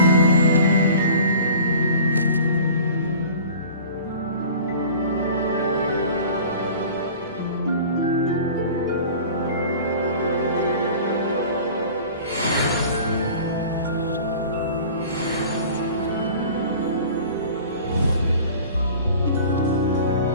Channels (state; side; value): inverted; both; correlation -0.43